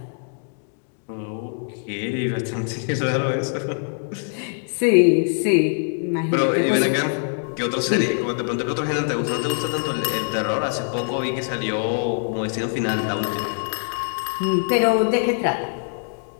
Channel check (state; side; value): silent; right; digital silence